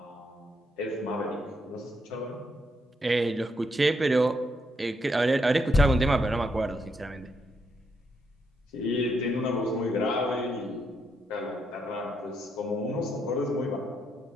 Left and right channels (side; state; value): both; normal; correlation 0.78